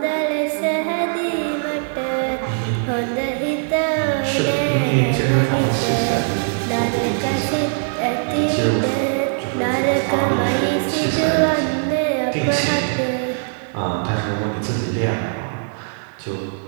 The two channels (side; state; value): left; silent; digital silence